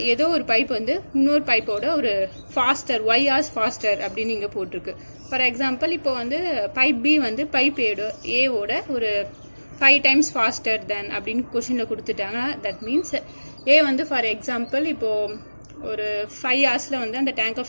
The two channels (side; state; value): both; inverted; correlation -1.00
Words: ஏதோ ஒரு பைப் வந்து இன்னொரு பைப்போட ஒரு ஃபாஸ்டர் y hours ஃபாஸ்டர் அப்படின்னு இங்கே போட்டிருக்கு. ஃபார் எக்ஸாம்பிள் இப்போ வந்து பைப் பி வந்து பைப் ஏவோட ஒரு 5 times ஃபாஸ்டர் தென் அப்படின்னு கொஷினில் கொடுத்துட்டாங்க. தட் மீன்ஸ் ஏ வந்து ஃபார் எக்ஸாம்பிள் இப்போது ஒரு 5 hours வந்து அந்த டேங்கை